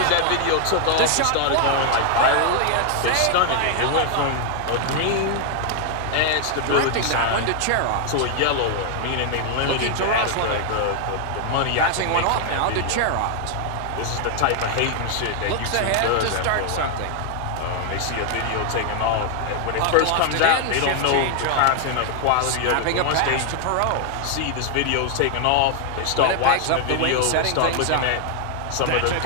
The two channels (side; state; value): both; different; correlation 0.00